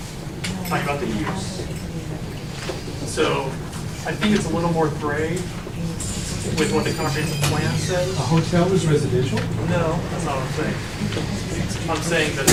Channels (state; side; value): identical; both; correlation 1.00